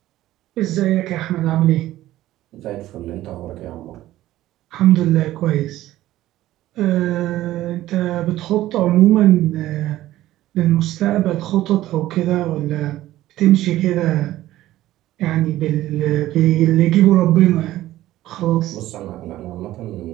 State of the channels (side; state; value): left; quieter; 15.0 dB